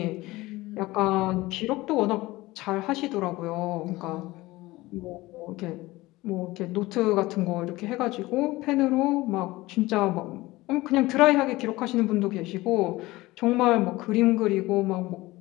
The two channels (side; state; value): right; quieter; 19.4 dB